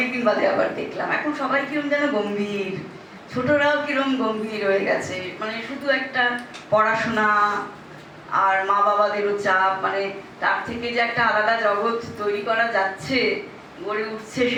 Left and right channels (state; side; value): identical; both; correlation 1.00